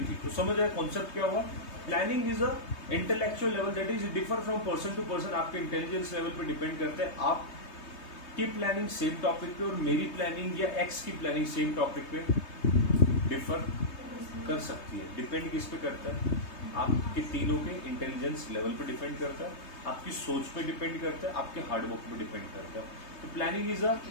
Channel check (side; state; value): right; late; 3.2 ms